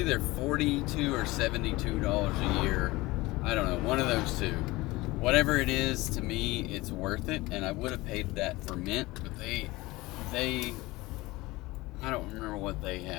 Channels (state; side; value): quieter; right; 20.7 dB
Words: $42 or $72 a year, I don't know, one of those two. Whatever it is, to me, it's worth it, and I would have paid that for Mint, but they I don't remember what they